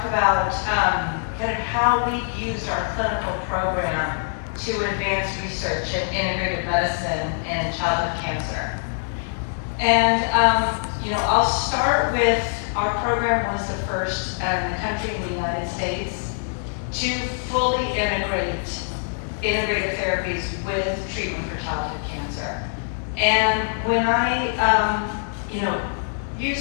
about kind of how we've used our clinical program to advance research in integrative medicine and childhood cancer. And I'll start with our program was the first in the country in the United States to fully integrate integrative therapies with treatment for childhood cancer. And when I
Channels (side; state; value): right; silent; 63 dB below the other